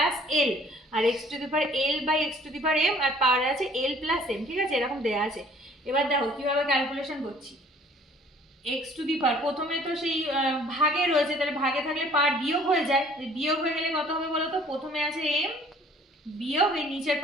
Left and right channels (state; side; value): normal; both; correlation 0.55